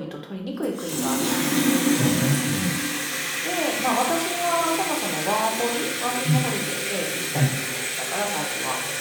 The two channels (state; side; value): identical; both; correlation 1.00